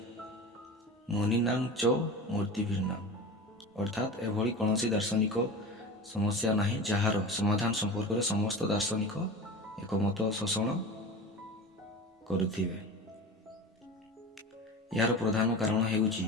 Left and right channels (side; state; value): both; normal; correlation 0.32